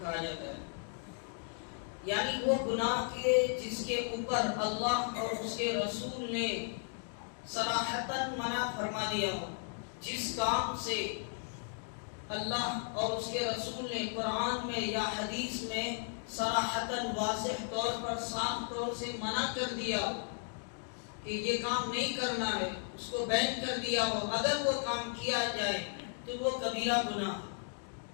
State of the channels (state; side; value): silent; right; 54 dB below the other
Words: جاتا ہے، یعنی وہ گناہ کے جس کے اوپر اللہ اور اس کے رسول نے صراحتاً منع فرما دیا ہو، جس کام سے اللہ اور اس کے رسول نے قرآن میں یا حدیث میں صراحتاً واضح طور پر صاف طور سے منع کر دیا ہو کہ یہ کام نہیں کرنا ہے، اس کو بین کر دیا ہو، اگر وہ کام کیا جائے تو وہ کبیرہ گناہ ہے۔